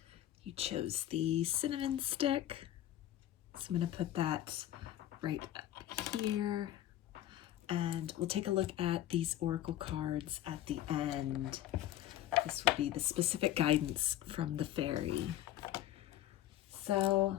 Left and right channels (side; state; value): right; quieter; 12.9 dB